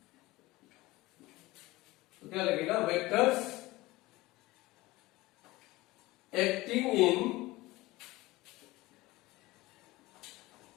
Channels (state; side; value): quieter; right; 19.8 dB